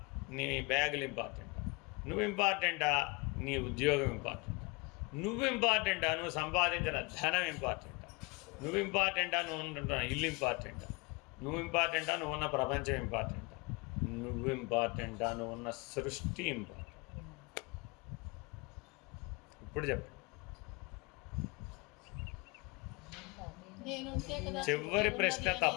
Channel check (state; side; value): quieter; right; 27.1 dB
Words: నీ బ్యాగులు ఇంపార్టెంటా, నువ్వు ఇంపార్టెంటా, నీ ఉద్యోగం ఇంపార్టెంటా, నువ్వు ఇంపార్టెంటా, నువ్వు సంపాదించిన ధనం ఇంపార్టెంటా, నువ్వు ఇంపార్టెంటా, నువ్వు ఉంటున్న ఇల్లు ఇంపార్టెంటా, నువ్వు ఇంపార్టెంటా, నువ్వు ఉన్న ప్రపంచం ఇంపార్టెంటా, నువ్వు ఇంపార్టెంటా, నువ్వు ఉన్న సృష్టి ఇంపార్టెంట్. ఇప్పుడు చెప్పండి. చివరి ప్రశ్న